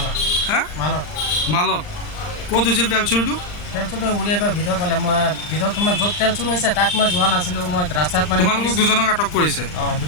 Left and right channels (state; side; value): late; right; 39 ms